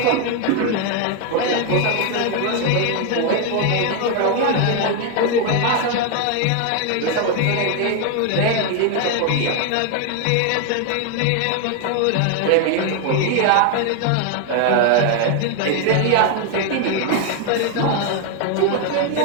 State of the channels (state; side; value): different; both; correlation 0.01